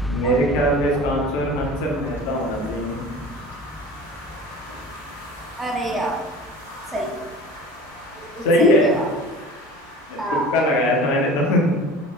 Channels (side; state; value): both; normal; correlation 0.39